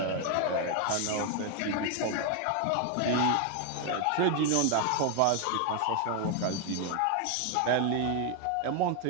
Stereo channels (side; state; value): both; different; correlation 0.01